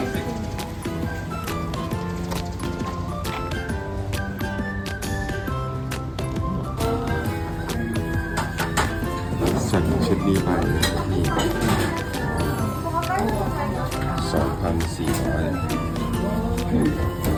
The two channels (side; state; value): both; identical; correlation 1.00